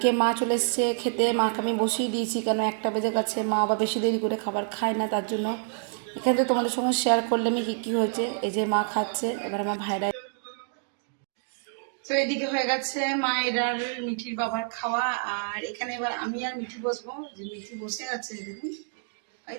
মা চলে এসছে খেতে। মাকে আমি বসিয়ে দিয়েছি, কেন 1টা বেজে গেছে। মা আবার বেশি দেরি করে খাবার খায় না, তার জন্য এখানে তো তোমাদের সঙ্গে শেয়ার করলাম কি কি হয়েছে। এই যে মা খাচ্ছে, এবার আমার ভাইরা। তো এদিকে হয়ে গেছে মায়ের আর মিঠির বাবার খাওয়া। আর এখানে এবার আমি আর মিঠি বসবো। যে মিঠি বসে আছে দেখুন, এই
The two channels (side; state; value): left; silent; digital silence